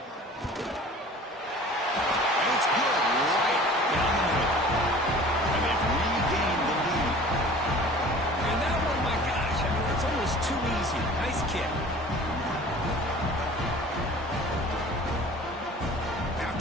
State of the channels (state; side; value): normal; both; correlation 0.45